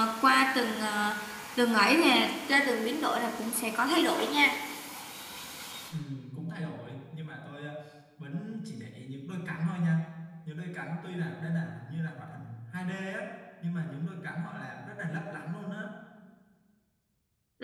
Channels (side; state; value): both; identical; correlation 1.00